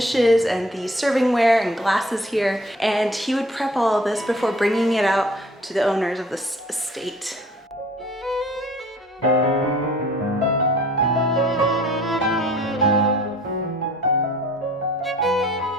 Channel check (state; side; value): normal; both; correlation 0.51